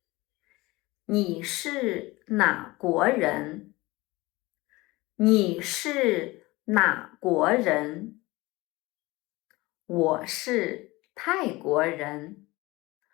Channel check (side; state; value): right; quieter; 21.4 dB